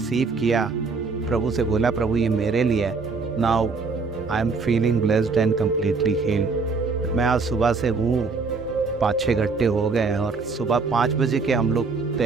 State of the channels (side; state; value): left; quieter; 4.5 dB